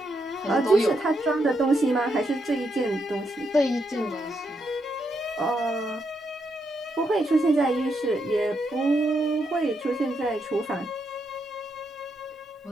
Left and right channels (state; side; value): normal; both; correlation 0.80